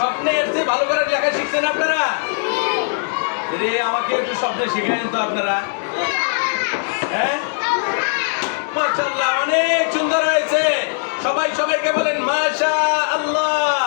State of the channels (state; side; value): silent; right; 66 dB below the other